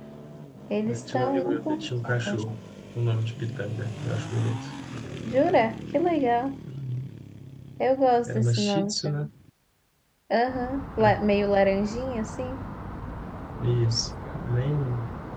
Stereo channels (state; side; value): identical; both; correlation 1.00